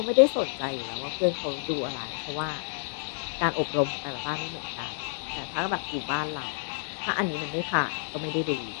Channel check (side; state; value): right; silent; digital silence